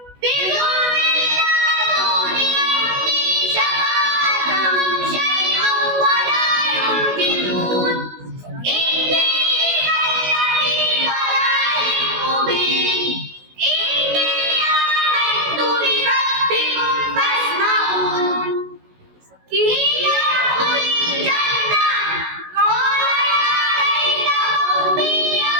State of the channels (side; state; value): left; late; 16 ms